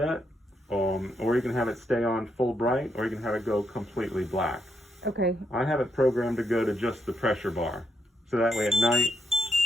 or you can have it stay on full bright, or you can have it go completely black. Okay. I have it programmed to go to just the pressure bar. So that way at night,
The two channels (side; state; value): both; normal; correlation 0.79